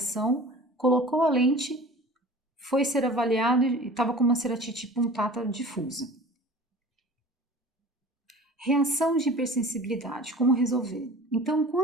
colocou a lente, foi ser avaliado e estava com uma ceratite punctata difusa. Reação de hipersensibilidade, como resolver? Então,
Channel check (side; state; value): both; normal; correlation 0.41